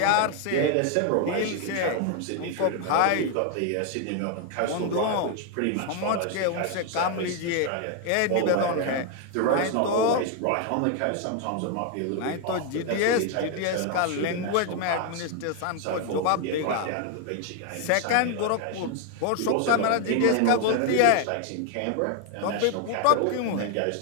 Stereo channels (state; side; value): different; both; correlation 0.01